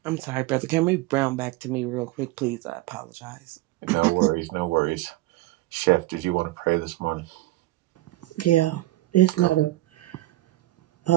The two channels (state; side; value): quieter; left; 17.4 dB